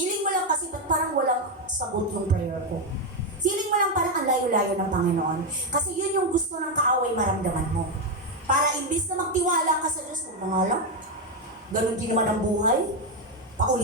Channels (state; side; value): normal; both; correlation 0.06